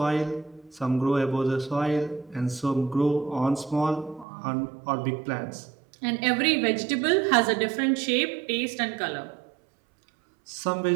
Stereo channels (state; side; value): drops out; left; at 4.2 s